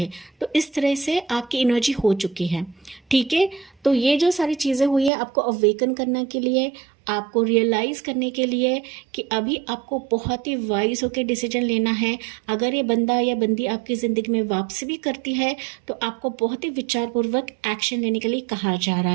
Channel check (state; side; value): drops out; left; at 5.1 s